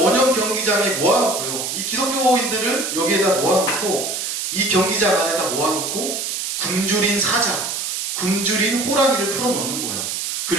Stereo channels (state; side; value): noise; right; hiss, 3 dB below the sound